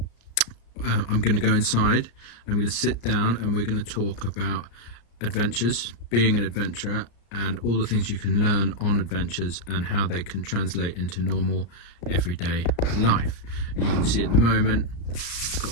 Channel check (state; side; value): late; right; 34 ms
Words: I'm going to go inside, I'm going to sit down, and we're going to talk about adventures, being an adventurer, and all the things you can learn on adventures and how they can translate into normal everyday life. And you can see at the moment I've